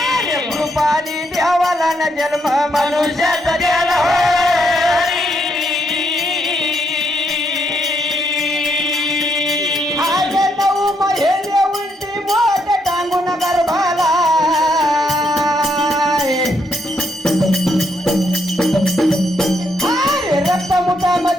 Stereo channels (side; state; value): both; normal; correlation 0.75